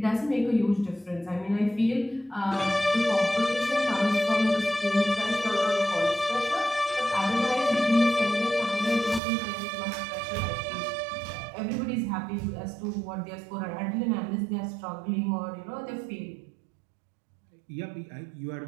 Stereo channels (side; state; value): left; drops out; at 9.2 s